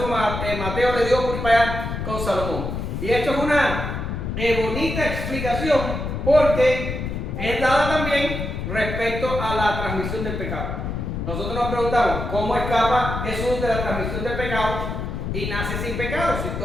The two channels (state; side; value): noise; left; rumble, 4 dB below the sound